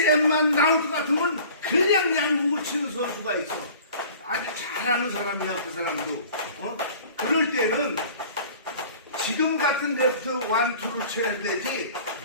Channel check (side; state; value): both; inverted; correlation -0.46